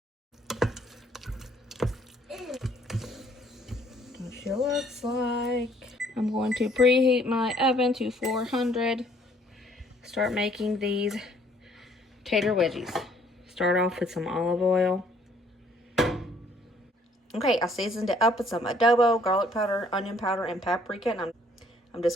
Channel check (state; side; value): normal; both; correlation 0.62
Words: She looks like. I'm going to preheat my oven to 400. Start making these tater wedgies. Start off with some olive oil. Okay, I seasoned it up with some adobo, garlic powder, onion powder, and paprika, and I'm